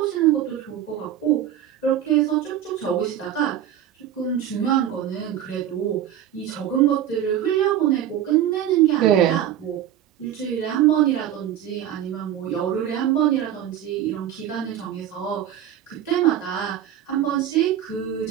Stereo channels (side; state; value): left; quieter; 10.8 dB